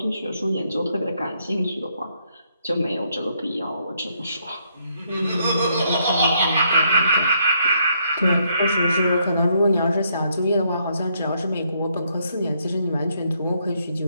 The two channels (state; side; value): inverted; both; correlation -0.73